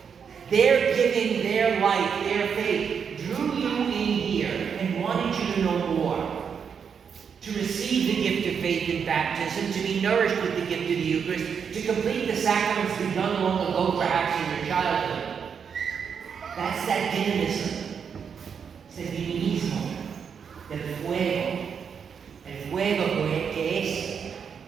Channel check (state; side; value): quieter; left; 6.8 dB